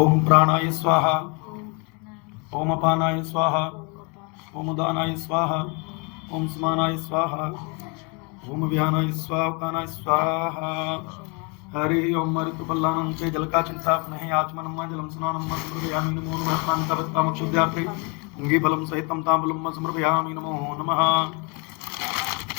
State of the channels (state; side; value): quieter; right; 30.1 dB